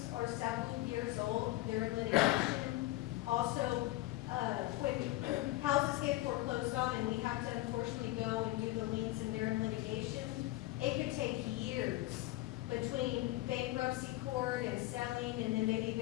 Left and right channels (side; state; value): right; quieter; 17.6 dB